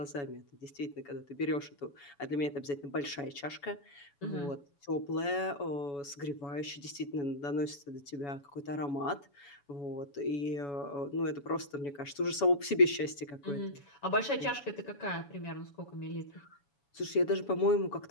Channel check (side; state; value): right; late; 7.1 ms